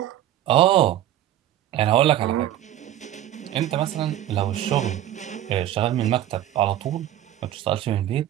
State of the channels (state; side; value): quieter; left; 12.5 dB